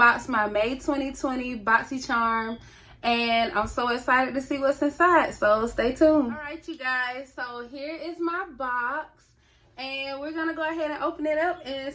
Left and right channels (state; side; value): identical; both; correlation 1.00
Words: my May 2020 Boxy Charm, and I'm so excited to see what's inside, so stay tuned. Alright you guys, so here is my box, and we're gonna go ahead and open it up and